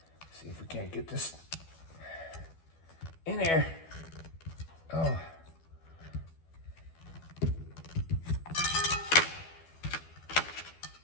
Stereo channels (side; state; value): right; late; 12 ms